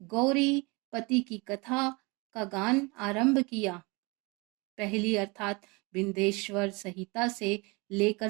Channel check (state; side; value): quieter; left; 27.2 dB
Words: पति की कथा का गान आरंभ किया। पहली अर्थात विंध्येश्वर संहिता से